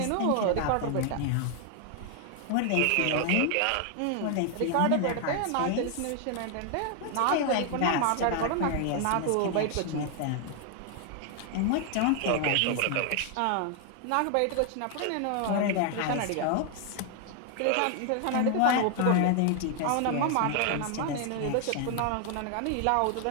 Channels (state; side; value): different; both; correlation 0.00